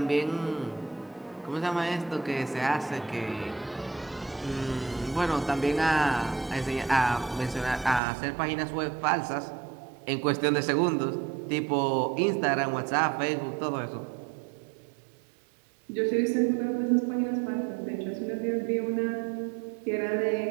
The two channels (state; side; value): drops out; left; at 8.0 s